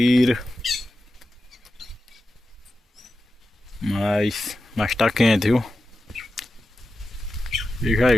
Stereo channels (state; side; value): normal; both; correlation 0.92